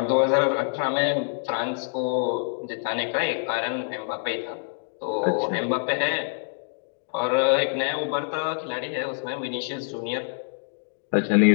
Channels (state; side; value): silent; right; digital silence